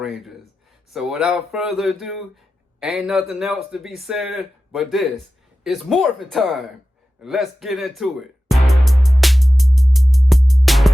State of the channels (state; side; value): normal; both; correlation 0.93